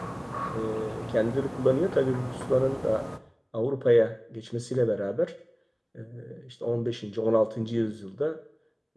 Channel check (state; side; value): identical; both; correlation 1.00